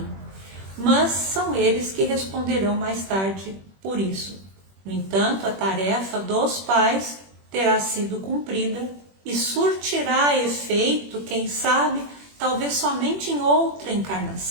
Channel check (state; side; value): late; left; 21 ms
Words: Mas são eles que responderão mais tarde por isso. No entanto, a tarefa dos pais terá sido cumprida e surtirá efeito, quem sabe, talvez somente em outra